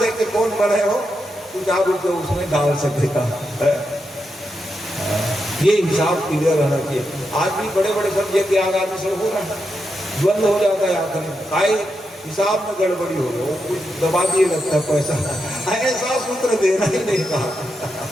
कौन बने हो, कुछ आप रुपये उसमें डाल सकेगा। ये हिसाब क्लियर रहना चाहिए। आज भी बड़े बड़े सब यज्ञ आदि से हो रहा है, द्वंद हो जाता है आखिर में, काय हिसाब में गड़बड़ी हो रही, वो कुछ दबा दिए लगता है पैसा। ऐसा सूत्र देना ही नहीं कहा,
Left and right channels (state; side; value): normal; both; correlation 0.85